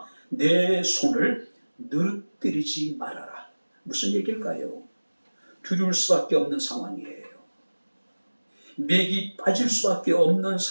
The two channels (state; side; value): inverted; both; correlation -1.00